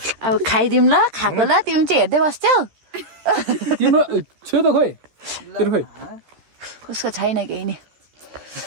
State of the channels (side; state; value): left; late; 13 ms